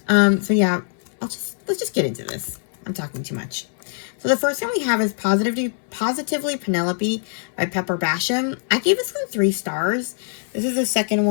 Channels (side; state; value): right; silent; digital silence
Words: So yeah, let's just get into this. I'm talking too much. So the first one we have is Positively Penelope by Pepper Basham. I gave this one 3 stars. This is the second